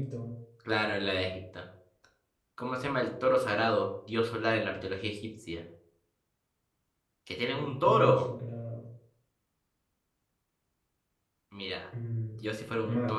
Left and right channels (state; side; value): identical; both; correlation 1.00